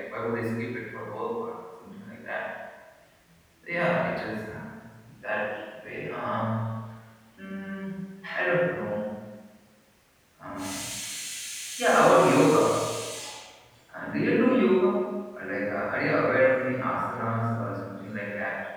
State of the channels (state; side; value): identical; both; correlation 1.00